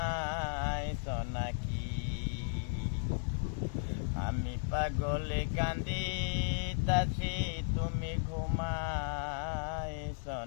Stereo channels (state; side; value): silent; right; digital silence